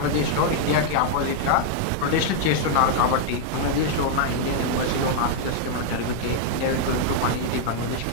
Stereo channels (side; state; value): both; different; correlation 0.00